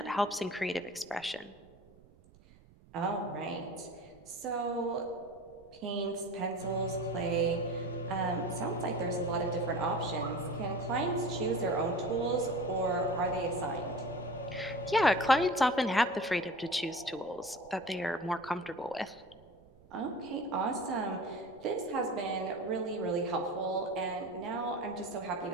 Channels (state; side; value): noise; right; rumble, 25 dB below the sound